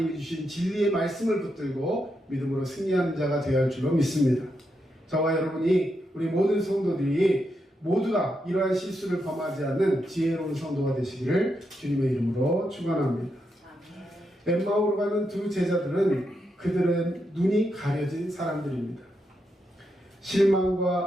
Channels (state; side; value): normal; both; correlation 0.83